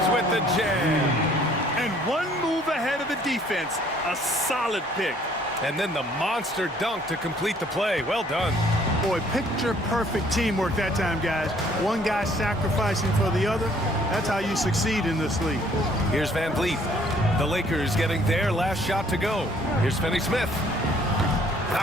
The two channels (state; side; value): normal; both; correlation 0.60